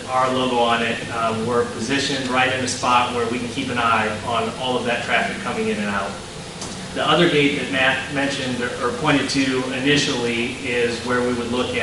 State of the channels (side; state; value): both; identical; correlation 1.00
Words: our logo on it, we're positioned right in a spot where we can keep an eye on all of that traffic coming in and out. The other gate that Matt mentioned or pointed to initially is where we would look